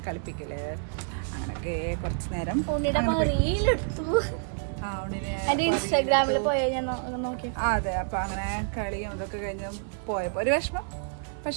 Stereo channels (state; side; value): silent; left; 58 dB below the other